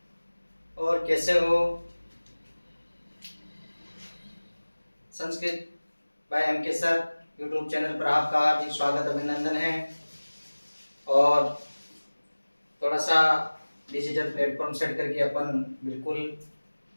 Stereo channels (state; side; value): inverted; both; correlation -1.00